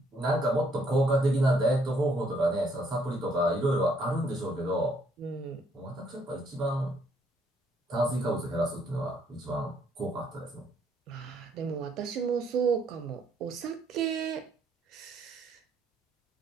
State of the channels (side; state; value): both; normal; correlation 0.69